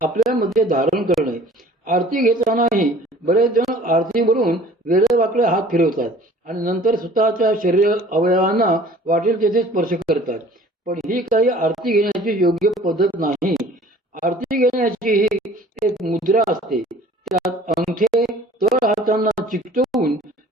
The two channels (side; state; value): both; normal; correlation 0.49